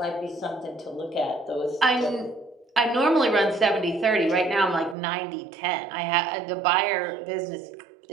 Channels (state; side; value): drops out; left; at 5.0 s